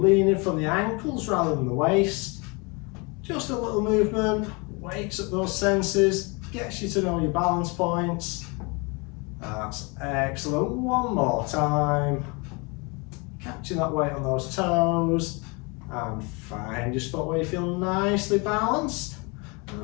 leaning from the ankles rather than the waist. Just a little movement, wakes up those senses, gets you to know your balance points. That's excellent. One more time. Catching that weight on those toes. And find your spot where you feel nicely balanced.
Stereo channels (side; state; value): right; quieter; 29.5 dB